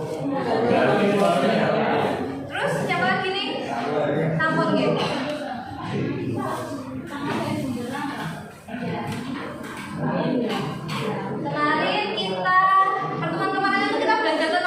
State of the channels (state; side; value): identical; both; correlation 1.00